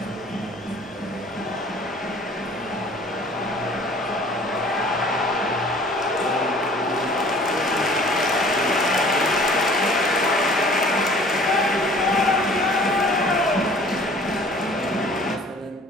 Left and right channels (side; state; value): both; normal; correlation 0.50